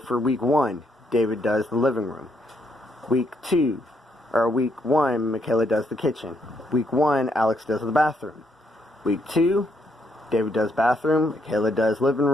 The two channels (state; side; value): normal; both; correlation 0.74